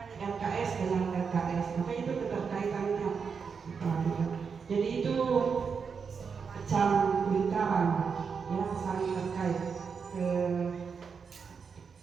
saran yang saling terkait ke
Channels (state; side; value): quieter; left; 5.9 dB